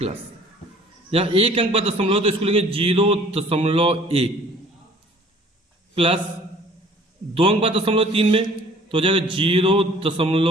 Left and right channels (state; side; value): normal; both; correlation 0.52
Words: यहाँ एक अंक बाद दशमलव तो इसको लिखेंगे 0.1 प्लस 2 अंक बाद दशमलव 3 में तो हो जाएगा